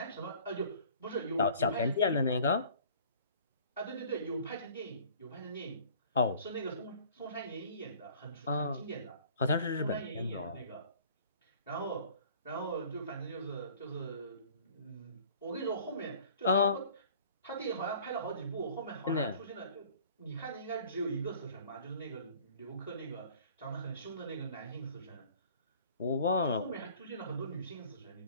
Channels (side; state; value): both; inverted; correlation -0.50